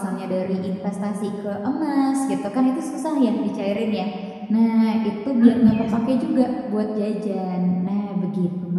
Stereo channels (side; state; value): both; identical; correlation 1.00